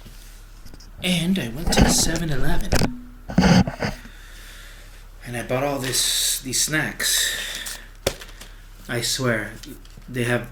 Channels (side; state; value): both; identical; correlation 1.00